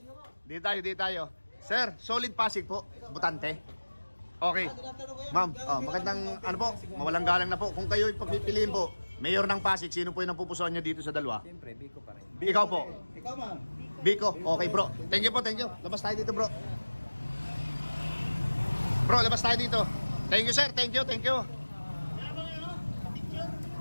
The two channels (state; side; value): inverted; both; correlation -1.00